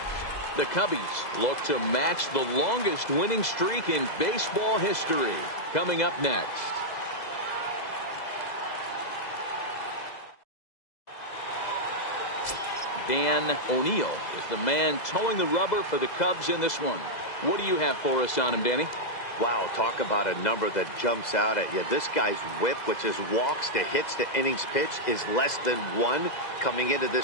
The Cubbies look to match the longest winning streak in baseball history. Coming up next. Dan O'Neill is the man towing the rubber for the Cubs in this one. What do you have for us on him, Danny? Wow, talk about a number that jumps out at you. This guy's whip, which is walks to hits to innings pitch, is less than 1 coming into this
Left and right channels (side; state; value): right; late; 2.0 ms